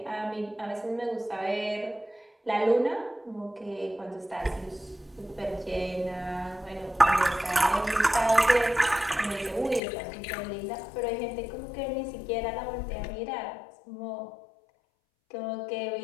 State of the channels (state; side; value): drops out; right; at 9.8 s